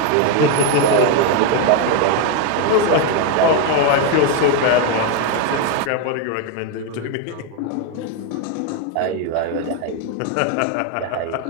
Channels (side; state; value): both; different; correlation 0.01